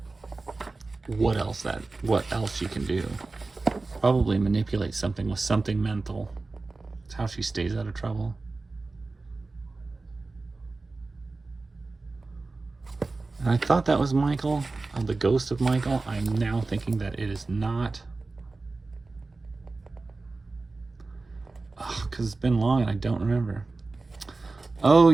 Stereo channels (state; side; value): quieter; left; 3.5 dB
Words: what else she can do. Probably manipulate something with something mental. It's how she stays out of trouble. And I thought that was Michael, the ghost of Michael. I'm now thinking that it is not. Because it's been long and I don't remember. Oh